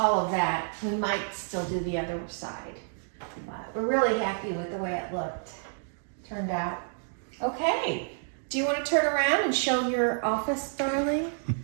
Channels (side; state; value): left; silent; digital silence